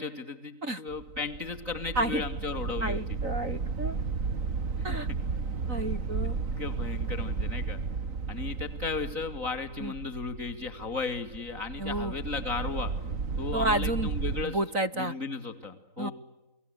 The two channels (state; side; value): late; left; 3.9 ms